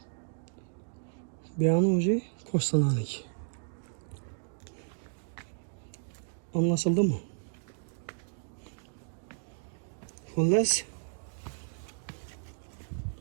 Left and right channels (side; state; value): left; silent; digital silence